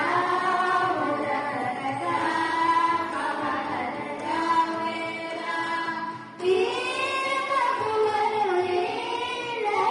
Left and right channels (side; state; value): both; identical; correlation 1.00